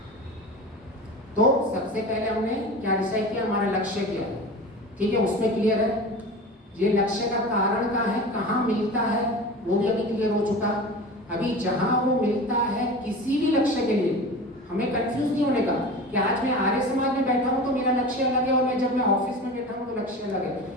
तो सबसे पहले हमने क्या डिसाइड किया, हमारा लक्ष्य क्या है, ठीक है, उसमें क्लियर है। ये लक्ष्य का कारण क्या है, कहाँ मिलता है, वो भी अभी क्लियर हो चुका। अभी जहां वो मिलता है किसी भी लक्ष्य के लिए, हमें कंफ्यूज नहीं होने का कि आज मैं आर्य समाज में बैठा हूं तो मेरा लक्ष्य अलग है और मैं जब मैं ऑफिस में बैठा हूं तो लक्ष्य अलग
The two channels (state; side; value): normal; both; correlation 0.33